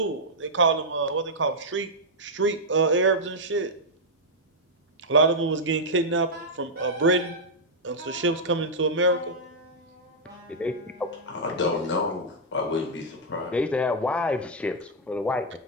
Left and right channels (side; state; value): both; normal; correlation -0.05